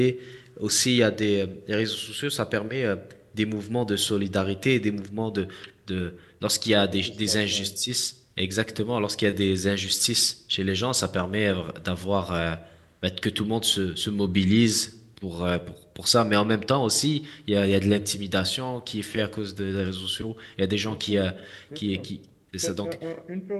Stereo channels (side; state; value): both; identical; correlation 1.00